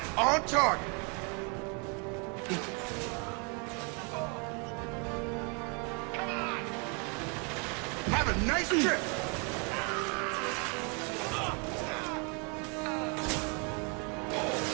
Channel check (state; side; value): quieter; left; 34.7 dB